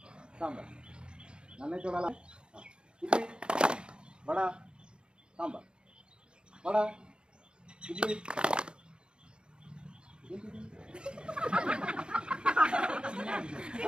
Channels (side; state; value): left; late; 0.052 ms